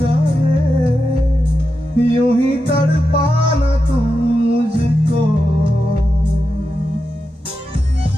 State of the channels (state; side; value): normal; both; correlation 0.89